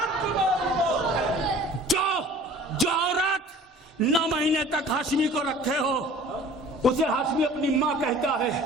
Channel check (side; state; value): both; normal; correlation 0.47